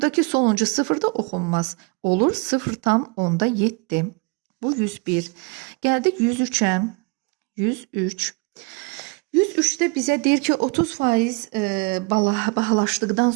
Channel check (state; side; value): quieter; left; 29.9 dB